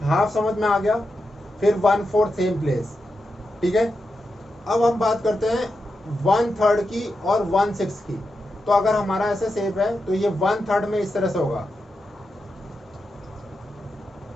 हाफ समझ में आ गया, फिर 1/4 सेम प्लेस, ठीक है। अब हम बात करते हैं 1/3 की और 1/6 की। तो अगर हमारा ऐसा शेप है तो ये 1/3 में इस तरह से होगा,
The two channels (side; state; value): both; normal; correlation 0.88